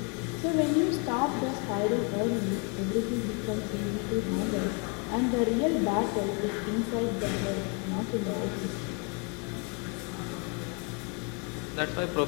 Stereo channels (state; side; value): quieter; right; 34.5 dB